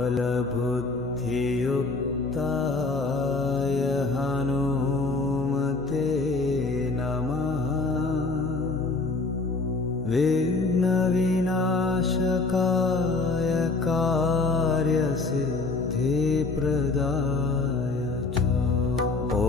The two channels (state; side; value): quieter; right; 3.7 dB